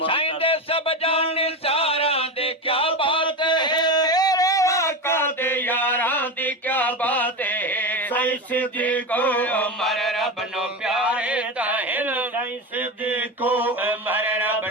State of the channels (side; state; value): both; normal; correlation 0.20